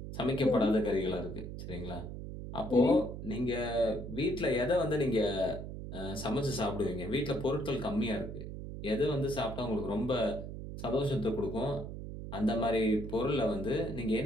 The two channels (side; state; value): right; noise; hum, 8 dB below the sound